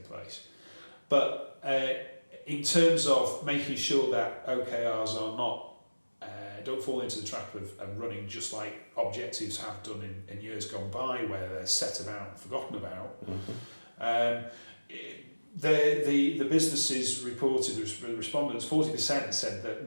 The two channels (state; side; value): inverted; both; correlation -1.00